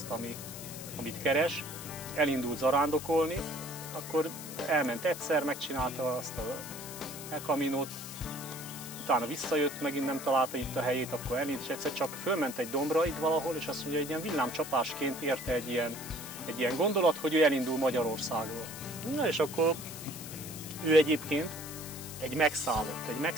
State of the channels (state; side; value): noise; left; hiss, 11 dB below the sound